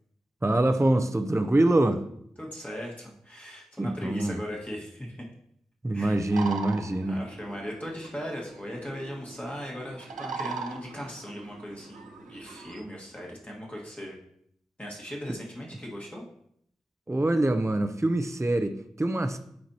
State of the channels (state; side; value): normal; both; correlation 0.94